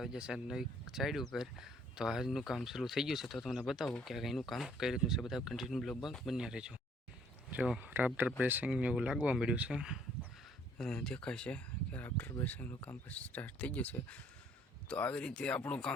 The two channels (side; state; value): both; normal; correlation 0.62